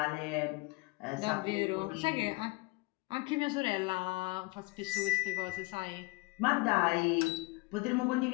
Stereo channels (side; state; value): right; quieter; 24.4 dB